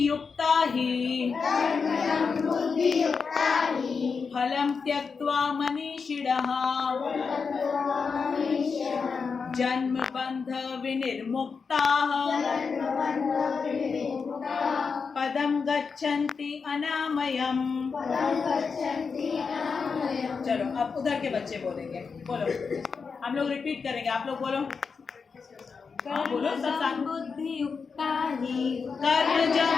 हि फलं त्यक्त्वा मनीषिणः जन्म बंध विनिर्मुक्ताः पदं गच्छन्ति अनामयम्। चलो अब उधर के बच्चे बोलेंगे। बोलो, हम लोग रिपीट करेंगे, आप लोग बोलो। बोलो सब साथ। बुद्धियुक्ता हि कर्मजं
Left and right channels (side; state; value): right; quieter; 5.3 dB